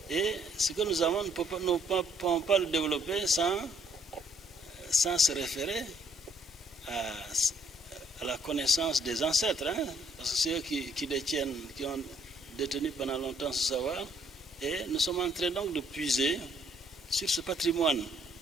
Et ce que nous avons, nous ne pouvons pas le développer sans se référer à la connaissance des ancêtres, hein, parce que c'est eux qui ont détenu pendant longtemps ce savoir, et nous sommes en train donc de puiser sur ce patrimoine.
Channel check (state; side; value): normal; both; correlation 0.66